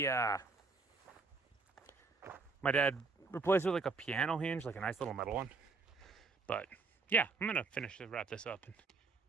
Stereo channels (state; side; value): quieter; left; 4.3 dB